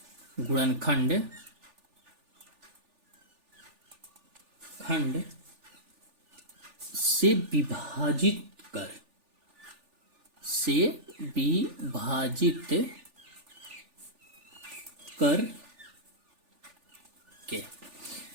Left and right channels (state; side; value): late; left; 3.4 ms